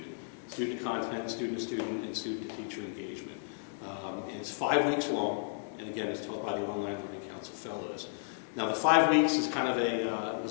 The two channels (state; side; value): silent; right; 56 dB below the other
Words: Student content, student-to-student, and student-to-teacher engagement. And it's 5 weeks long, and again, it's taught by the Online Learning Council Fellows. Now, the 5 weeks is kind of